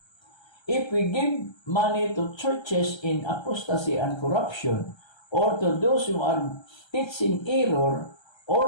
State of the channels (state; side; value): late; right; 1.3 ms